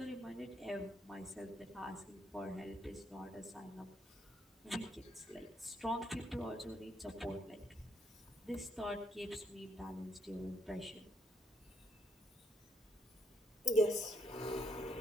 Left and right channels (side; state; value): both; normal; correlation 0.73